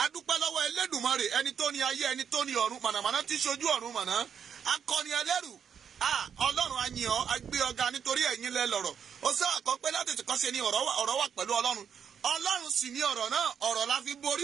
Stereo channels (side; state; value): left; quieter; 7.6 dB